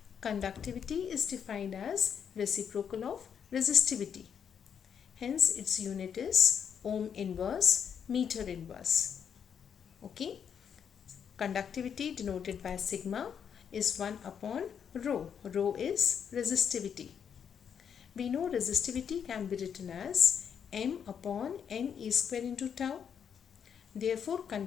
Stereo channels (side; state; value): right; quieter; 7.7 dB